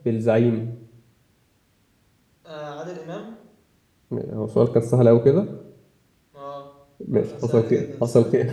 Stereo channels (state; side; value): identical; both; correlation 1.00